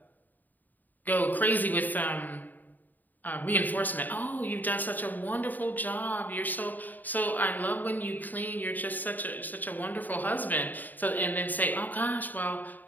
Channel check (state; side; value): late; right; 0.086 ms